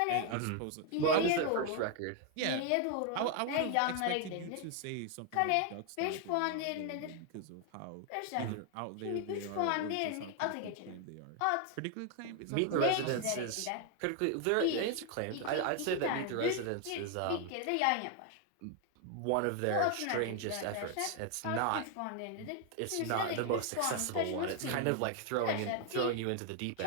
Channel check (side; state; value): both; different; correlation 0.00